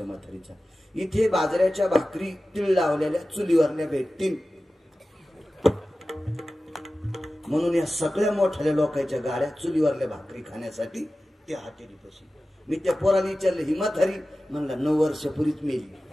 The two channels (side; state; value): both; normal; correlation 0.95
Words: म्हातारीचा. इथे बाजऱ्याच्या भाकरी तीळ लावलेल्या चुलीवरल्या भेटतील म्हणून या सगळ्या मोठ्या लोकांच्या गाड्या चुलीवरल्या भाकरी खाण्यासाठी त्या हॉटेलीपाशी. मी त्या पोराला विचारलं ही म्हातारी? म्हणला 9 वर्षापूर्वीच मेली.